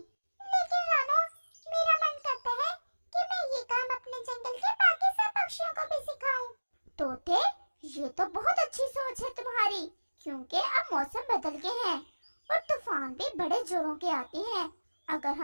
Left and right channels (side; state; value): both; inverted; correlation -1.00